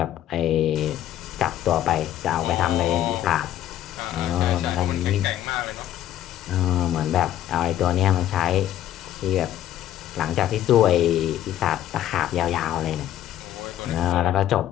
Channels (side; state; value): right; quieter; 12.2 dB